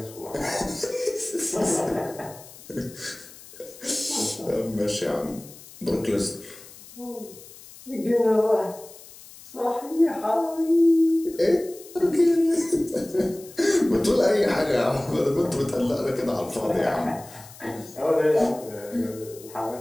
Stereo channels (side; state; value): left; noise; hiss, 19 dB below the sound